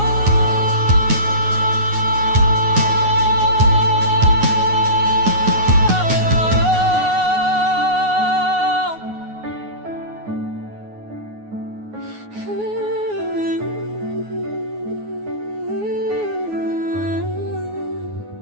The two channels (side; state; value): left; late; 9.5 ms